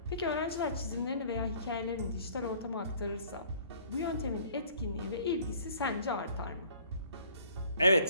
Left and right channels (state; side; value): inverted; both; correlation -0.56